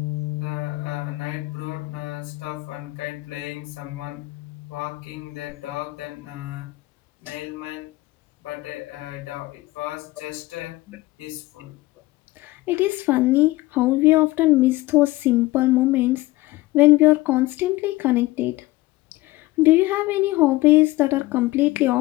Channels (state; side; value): quieter; right; 19.5 dB